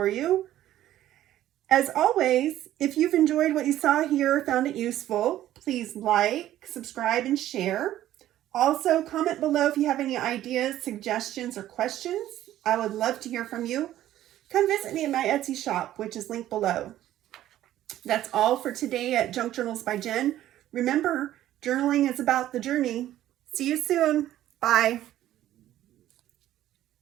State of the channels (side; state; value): left; quieter; 13.2 dB